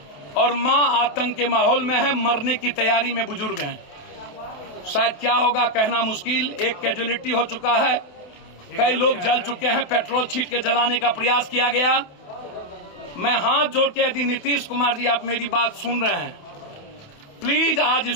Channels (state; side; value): late; right; 28 ms